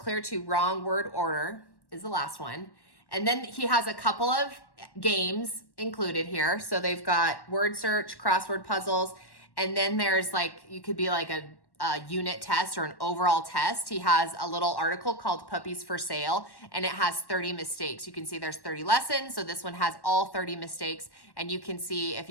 to wrong word order is the last one. And then he has a couple of games included here. So they've got word search, crossword puzzles, and then there's like, you could be like a unit test or an overall test. He has a little article called Puppies for Sale, and it has 30 mistakes. You can see there's 30 lessons. So this one has all 30 mistakes, and you can see if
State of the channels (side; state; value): right; late; 1.1 ms